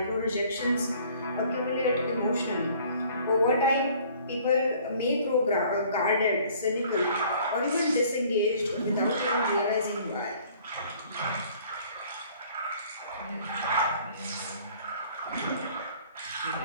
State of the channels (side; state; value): both; inverted; correlation -0.55